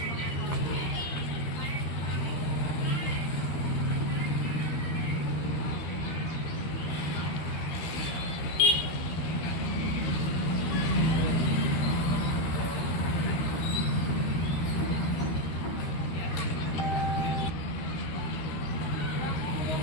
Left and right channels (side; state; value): right; late; 13 ms